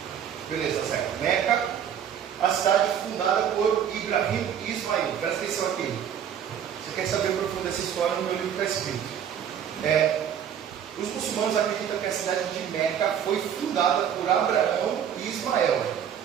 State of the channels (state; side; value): quieter; left; 8.9 dB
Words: Beleza, certo. Meca, a cidade fundada por Ibrahim e Ismael. Presta atenção aqui. Você quer saber o profundo dessa história, no meu livro está escrito. Os muçulmanos acreditam que a cidade de Meca foi fundada por Abraão e Ismael.